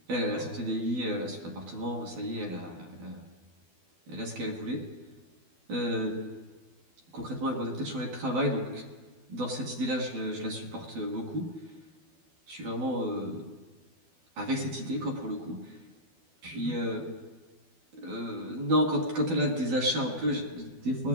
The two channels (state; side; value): late; left; 12 ms